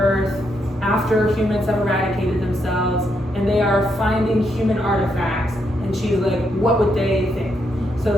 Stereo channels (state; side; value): normal; both; correlation 0.79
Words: after humans have eradicated themselves, and they are finding human artifacts, and she's like, what would they think?